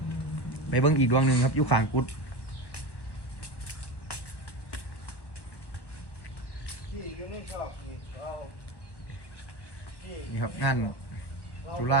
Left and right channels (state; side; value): late; right; 1.1 ms